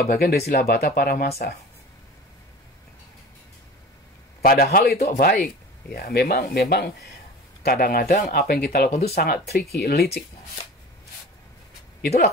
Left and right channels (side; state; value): both; normal; correlation 0.37